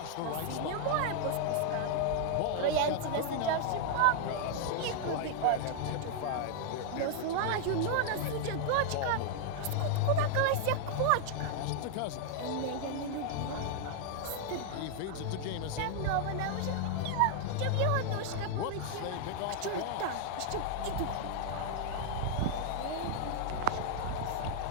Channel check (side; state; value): both; different; correlation 0.00